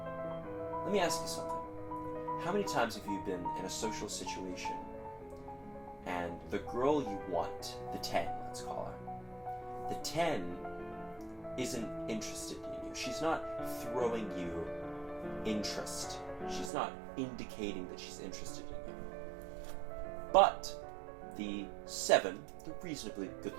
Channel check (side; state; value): left; drops out; at 16.7 s